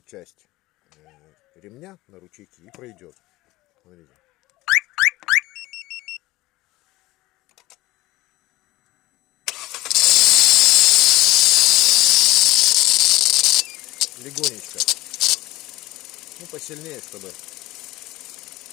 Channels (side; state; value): right; quieter; 19.0 dB